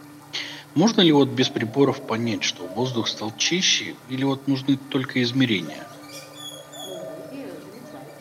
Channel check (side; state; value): both; identical; correlation 1.00